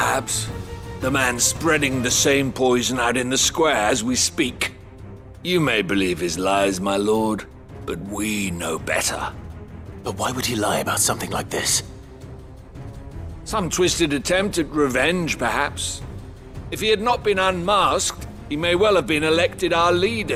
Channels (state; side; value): identical; both; correlation 1.00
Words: The man spreading the same poison out in the square as we speak. You may believe his lies, my lord, but we know better. But why would he lie about something like this? Some twisted attempt at revenge, perhaps. If he had not been unmasked, he may well have been elected our